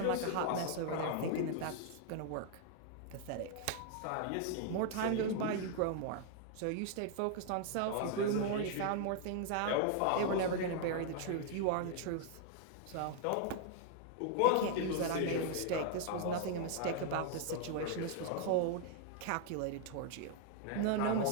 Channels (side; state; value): both; different; correlation 0.00